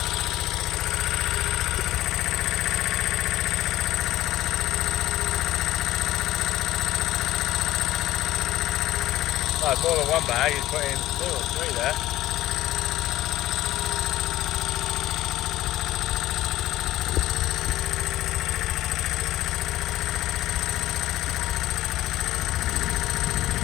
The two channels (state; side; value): quieter; right; 15.0 dB